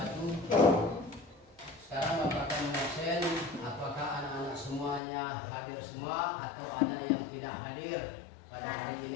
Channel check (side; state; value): right; drops out; at 5.0 s